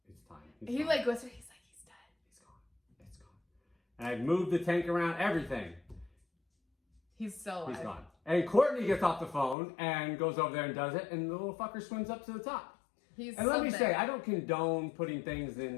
it's time. he like whispered, he's like, he's dead. He's gone. It's gone. And I moved the tank around, everything. He's still alive. He's gone. And Courtney gets off the phone and goes over there and does it, and the little fucker swims up to the top. And let me say, I don't condone putting things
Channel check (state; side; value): drops out; right; at 9.6 s